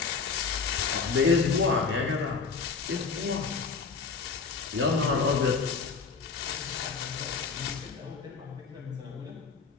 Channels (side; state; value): right; quieter; 5.0 dB